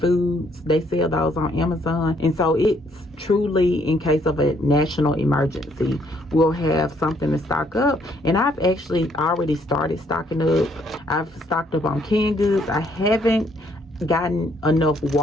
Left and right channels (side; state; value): both; normal; correlation 0.68